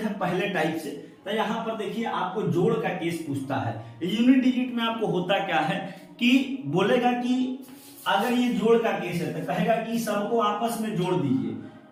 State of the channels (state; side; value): identical; both; correlation 1.00